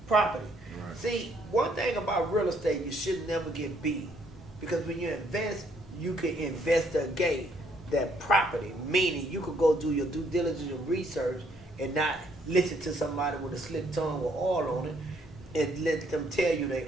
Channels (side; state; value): both; normal; correlation 0.68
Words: property. Right. See, one thing about real estate, you should never get beat. Because when you invest, you can investigate that property. Meaning, you could go do your due diligence and research and not listen to somebody with a slick tongue with oil on it and let them tell you they